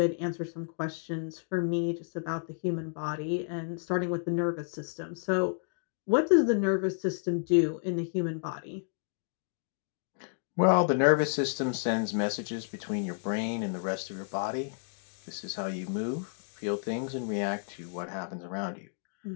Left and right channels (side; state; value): right; silent; digital silence